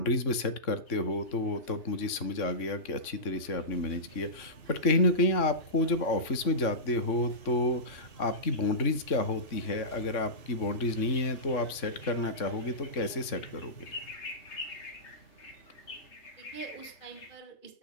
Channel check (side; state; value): right; late; 3.5 ms